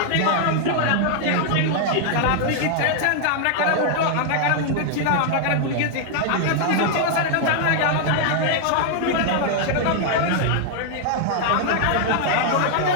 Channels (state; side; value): different; both; correlation 0.00